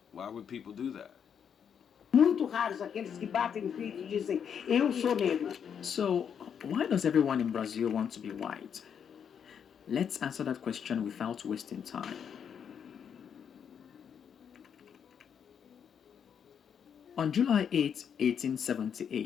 Why would people do that? Muito raros aqueles que batem no peito e dizem, eu sou negro. So, why does everyone in Brazil want to be white? Let's answer that question without wasting time. On July 8,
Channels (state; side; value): quieter; right; 7.7 dB